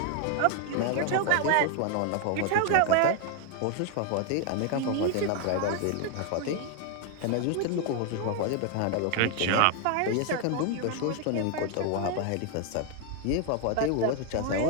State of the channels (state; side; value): different; both; correlation 0.01